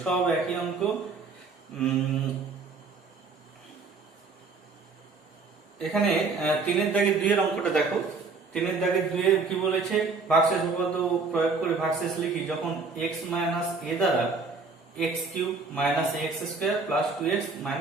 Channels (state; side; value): quieter; left; 4.3 dB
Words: সব একই অঙ্ক। এখানে তিনের দাগে দুইয়ের অঙ্কটা দেখো, তিনের দাগে দুইয়ে কি বলেছে, ভাগশেষ উপপাদ্য প্রয়োগ করে ভাগশেষ লিখি যখন x মাইনাস a দ্বারা x cube minus x square plus 2x